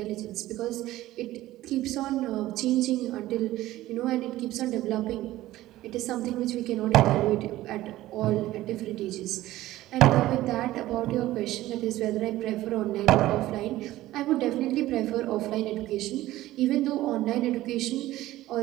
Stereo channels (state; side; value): quieter; left; 15.9 dB